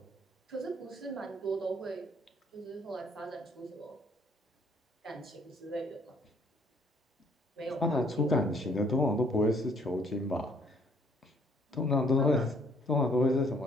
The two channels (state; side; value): normal; both; correlation 0.63